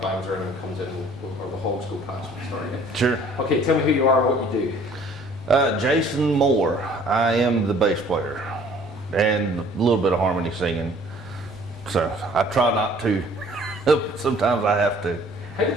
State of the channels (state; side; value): normal; both; correlation 0.55